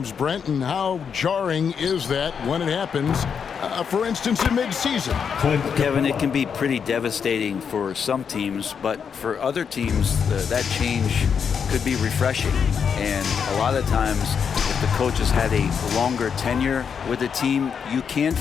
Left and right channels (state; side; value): quieter; right; 6.8 dB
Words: Brent, and how jarring is that when it happens, for instance, in mid-season? Kevin, it can be pretty devastating for some teams, but for other teams, that change could be refreshing. And a lot of times, if the coach has had a longer tenure with the team, you can